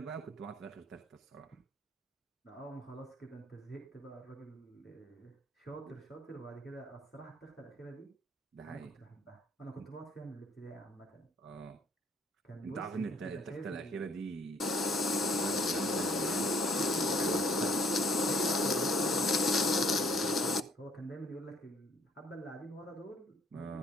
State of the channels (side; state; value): both; normal; correlation 0.63